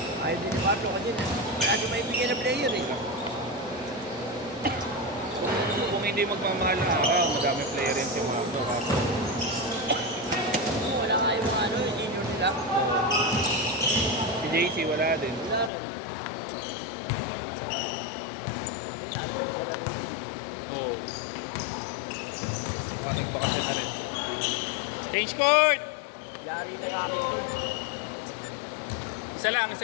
Ayaw din ni Marlo kasi wala siya maibigyan na player eh. Kung hindi magmamahal na araw, madami player yan si Marco. Wala nga yung ano, yung senior nila. Si JC wala din. Wala rin. Oo. Maraming bakasyon na rin. Change court! Yari na sa akin yun. Isa lang,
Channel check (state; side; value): drops out; right; at 15.7 s